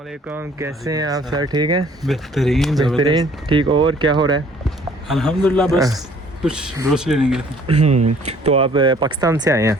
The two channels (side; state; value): both; normal; correlation 0.56